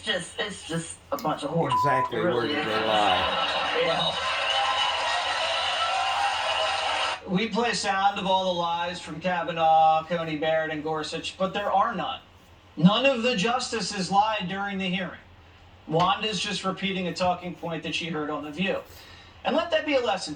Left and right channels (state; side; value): identical; both; correlation 1.00